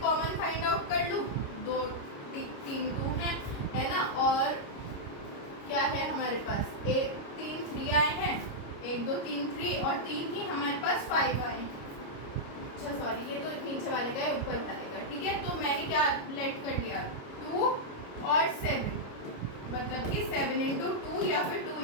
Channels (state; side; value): late; right; 29 ms